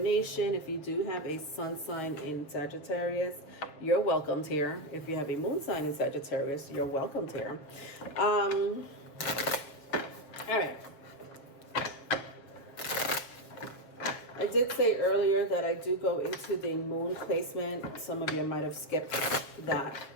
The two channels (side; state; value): right; late; 6.6 ms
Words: If you do have a sun sign in Sagittarius, you're welcomed here. If you have a moon sign in Sagittarius, you're welcomed here. All right. I did say earlier that I do go into the moon placement. Some of you might have skipped that